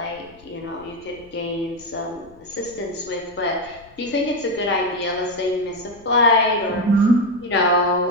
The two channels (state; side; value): noise; left; rumble, 26 dB below the sound